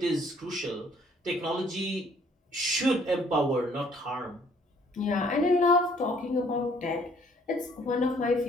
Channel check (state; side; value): normal; both; correlation 0.61